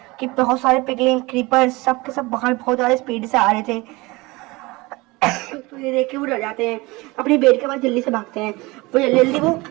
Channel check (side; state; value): left; quieter; 22.9 dB